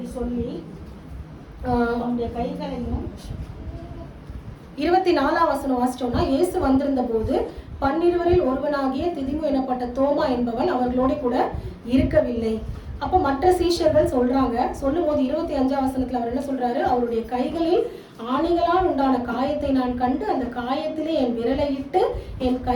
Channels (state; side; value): identical; both; correlation 1.00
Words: சொல்லி அவனுடைய கைகளையும் 24ஆம் வசனம் வாசிச்சோம்னா, இயேசு வந்திருந்த போது 12 ஒருவனாகிய திதிமு எனப்பட்ட தோமா என்பவன் அவர்களோட கூட இருக்கவில்லை. அப்போ மற்ற சீஷர்கள் சொல்றாங்க. சொல்லும் போது 25ஆம் வசனத்துல அவர் என்ன சொல்றாரு, அவருடைய கைகளில் ஆணிகளால் உண்டான காயத்தை நான் கண்டு அந்த காயத்திலே என் விரலை இட்டு என்